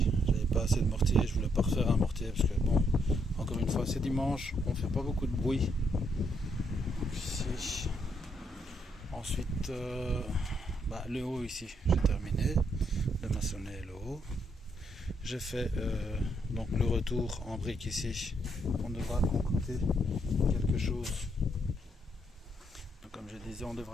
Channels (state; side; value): normal; both; correlation 0.75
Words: j'avais pas assez de mortier, je voulais pas refaire un mortier parce que bon, encore une fois c'est dimanche, on fait pas beaucoup de bruit. Donc ici ensuite le haut ici j'ai terminé de maçonner le haut. J'ai fait donc le retour en brique ici. On devra concocter quelque chose. Donc, comme je disais, on